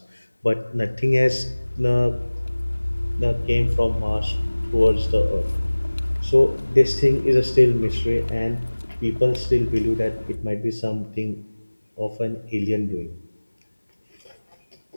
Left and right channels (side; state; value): both; inverted; correlation -1.00